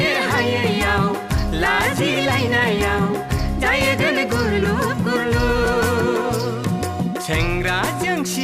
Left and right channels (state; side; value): identical; both; correlation 1.00